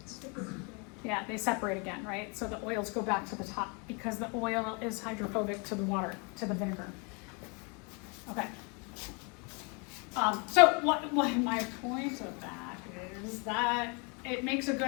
Yeah, they separate again, right? So the oils go back to the top because the oil is hydrophobic to the water, to the vinegar. Okay. So what my point of that is that it makes a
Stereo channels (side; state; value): right; quieter; 33.1 dB